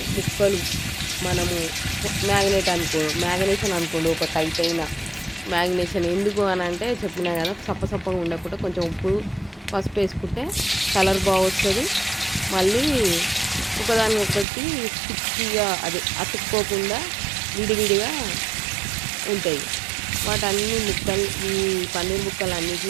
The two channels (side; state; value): left; drops out; at 14.5 s